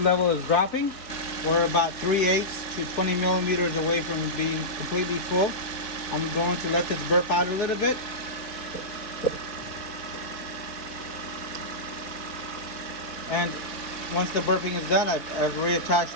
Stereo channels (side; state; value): right; late; 4.0 ms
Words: level is dropping. We're about 3/8 to 20 millimeters away from being completely full. I'm going to let this burp out a little bit. And once the burping is done, I've